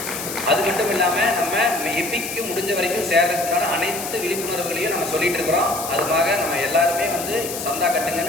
அது மட்டும் இல்லாமல் நம்ம எப்பிக்கு முடிஞ்ச வரைக்கும் சேர்றதுனால அனைத்து விழிப்புணர்வுகளையும் நம்ம சொல்லிட்டு இருக்கிறோம். அதுக்காக நம்ம எல்லாருமே வந்து சந்தா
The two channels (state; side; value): noise; left; hiss, 7 dB below the sound